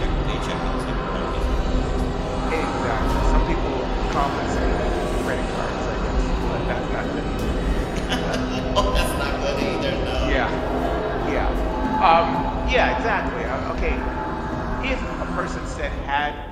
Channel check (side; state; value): both; identical; correlation 1.00